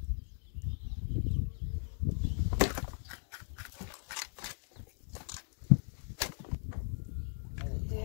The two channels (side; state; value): right; silent; digital silence